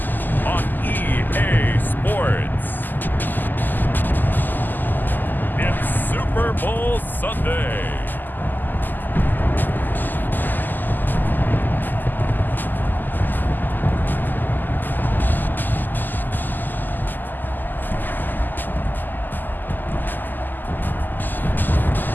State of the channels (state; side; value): late; right; 0.088 ms